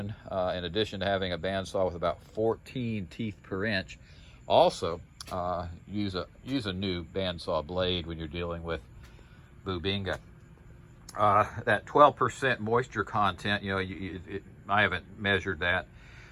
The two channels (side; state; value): both; identical; correlation 1.00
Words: in addition to having a bandsaw with about 14 teeth per inch, also use a new bandsaw blade when you're dealing with Bubinga. That 12% moisture content, I haven't measured that,